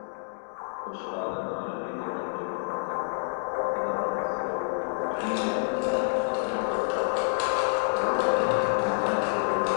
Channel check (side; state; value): right; silent; digital silence